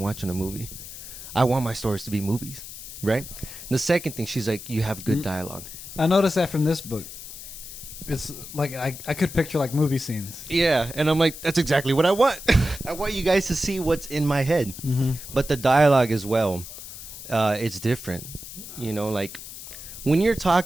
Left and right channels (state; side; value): noise; left; hiss, 12 dB below the sound